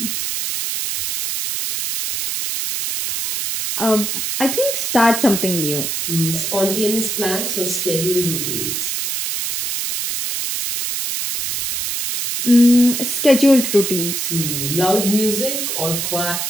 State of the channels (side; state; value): right; noise; hiss, 2 dB below the sound